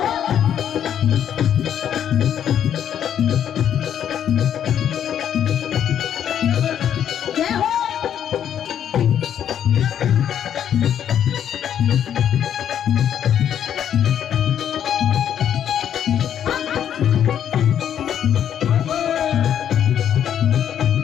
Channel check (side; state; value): right; quieter; 9.6 dB